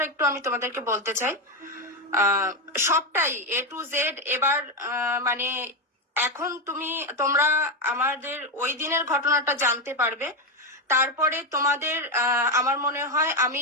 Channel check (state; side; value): normal; both; correlation 0.10